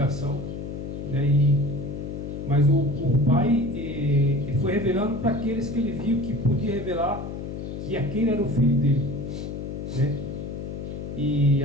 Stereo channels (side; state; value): left; noise; hum, 7 dB below the sound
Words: né? Mas o Pai ele foi revelando para aqueles que ele viu que podia revelar que aquele era o filho dele, né? E